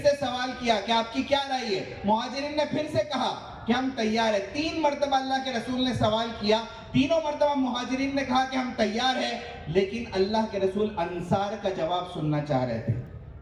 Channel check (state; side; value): identical; both; correlation 1.00